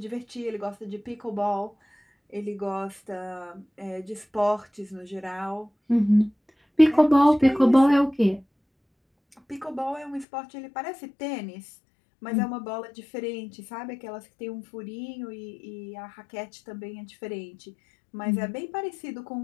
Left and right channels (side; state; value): right; drops out; at 10.2 s